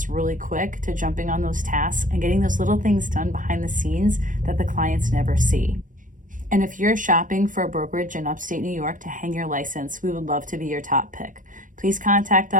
really quick to jumping on those tasks and getting those little things done behind the scenes that the clients never see. And if you're shopping for a brokerage in upstate New York to hang your license, we would love to be your top pick. Please contact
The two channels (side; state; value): left; late; 0.38 ms